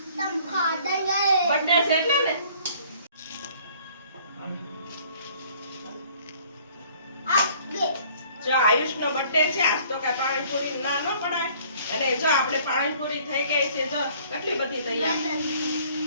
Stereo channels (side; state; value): both; inverted; correlation -0.56